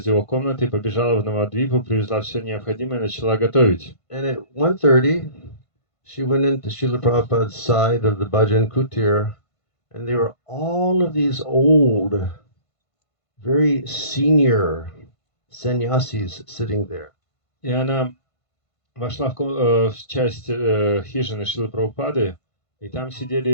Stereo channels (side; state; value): right; late; 1.5 ms